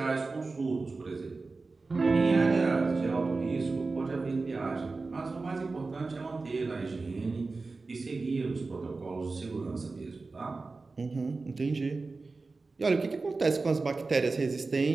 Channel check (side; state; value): left; quieter; 3.8 dB